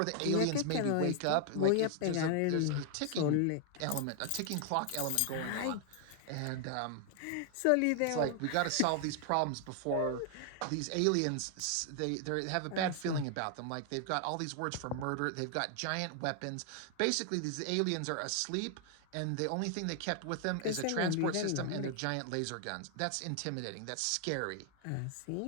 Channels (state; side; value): different; both; correlation 0.00